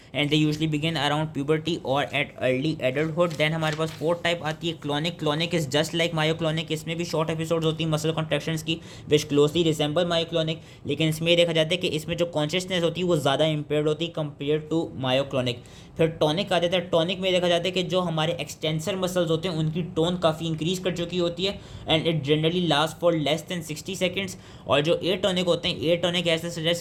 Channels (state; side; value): identical; both; correlation 1.00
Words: and they usually begin around puberty और एट अर्ली एडल्टहुड। देन हमारे पास 4th टाइप आती है clonic. Clonic is just like myoclonic. इसमें भी शॉर्ट एपिसोड्स होती हैं मसल कॉन्ट्रैक्शंस की विच क्लोजली रिसेंबल मायोक्लोनिक, लेकिन इसमें ये देखा जाता है कि इसमें जो कॉन्शियसनेस होती है वो ज़्यादा इम्पेयर्ड होती है कंपेयर टू मायोक्लोनिक। फिर टॉनिक आ जाता है। टॉनिक में देखा जाता है कि जो हमारे एक्सटेंसर मसल्स होते हैं उनकी टोन काफ़ी इंक्रीज कर चुकी होती है and it generally last for less than 60 seconds. और जो ए टॉनिक होते हैं, ए टॉनिक ऐसे